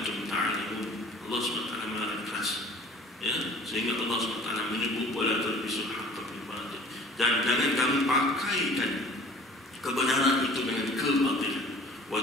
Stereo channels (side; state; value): both; normal; correlation 0.48